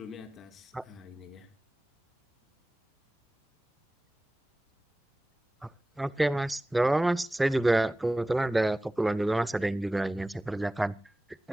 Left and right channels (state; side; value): normal; both; correlation 0.98